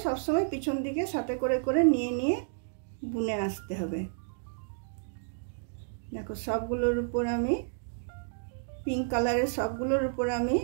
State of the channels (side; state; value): left; silent; digital silence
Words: সবসময় পিছন দিকে সাথে করে করে নিয়ে নিয়ে বুনে আসতে হবে। দেখো সবগুলোর উপর আমি পিঙ্ক কালারের সবগুলোর উপর আমি